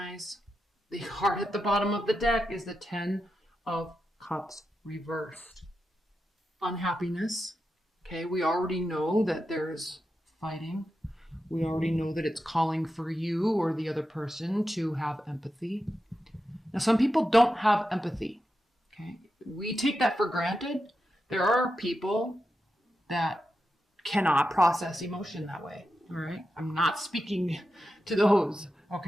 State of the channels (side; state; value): both; normal; correlation 0.89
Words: The card at the bottom of the deck is the Ten of Cups reversed. Unhappiness. Okay, we already know that there's fighting. We already know that it's calling for you or the other person to have empathy. Now, some people don't have empathy. Okay, we take that for granted. There are people that cannot process emotion that way. All right. I'm not speaking to those.